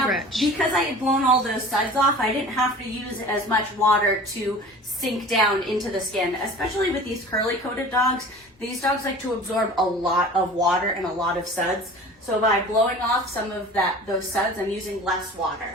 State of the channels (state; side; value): normal; both; correlation 0.41